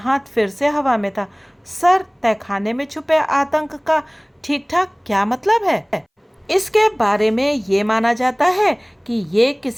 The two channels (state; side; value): identical; both; correlation 1.00